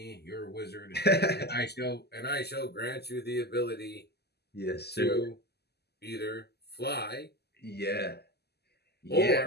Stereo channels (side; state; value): right; late; 0.47 ms